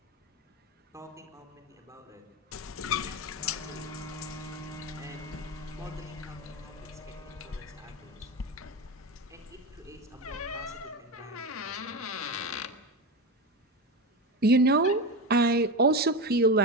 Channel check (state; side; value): normal; both; correlation 0.19